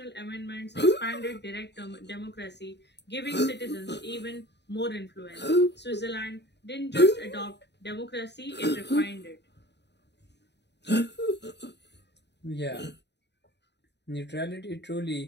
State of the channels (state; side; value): late; right; 0.50 ms